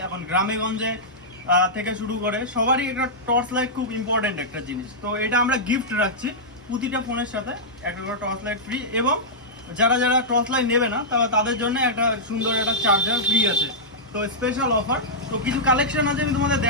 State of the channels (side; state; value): both; normal; correlation -0.11